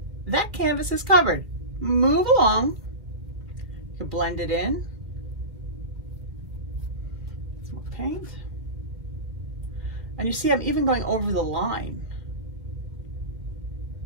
That canvas is covered. Move along. You can blend it in. Some more paint. And you see I'm even going over the line.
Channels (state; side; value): late; left; 2.3 ms